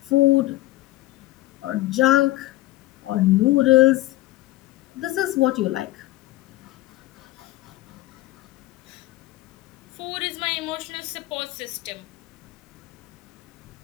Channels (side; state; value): right; quieter; 17.4 dB